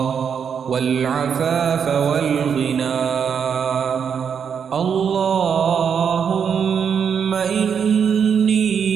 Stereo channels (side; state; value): left; quieter; 7.2 dB